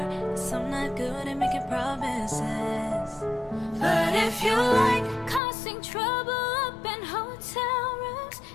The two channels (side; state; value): right; drops out; at 5.4 s